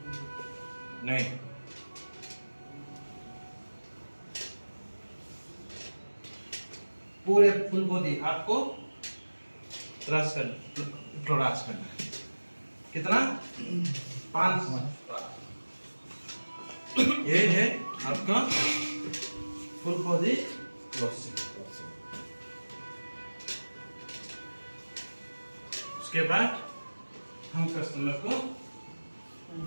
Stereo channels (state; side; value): inverted; both; correlation -1.00